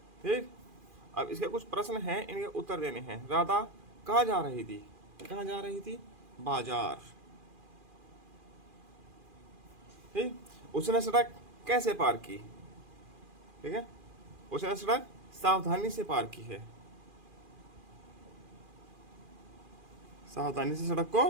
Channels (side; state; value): left; late; 2.4 ms